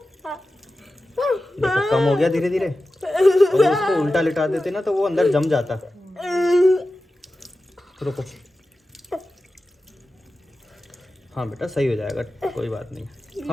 देखो कम हो गया धीरे धीरे। अगर इसको उल्टा लिटा देते ना तो वो अंदर जम जाता। रुको, हाँ बेटा सही हो जाएगा, कोई बात नहीं।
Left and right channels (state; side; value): normal; both; correlation 0.94